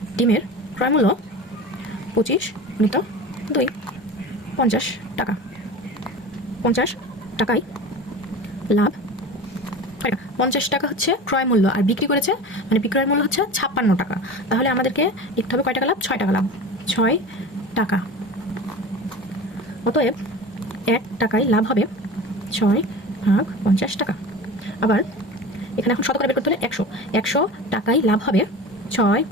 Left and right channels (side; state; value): both; normal; correlation 0.34